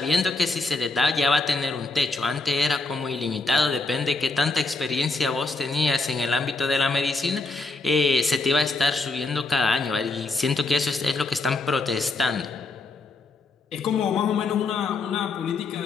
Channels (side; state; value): right; quieter; 3.6 dB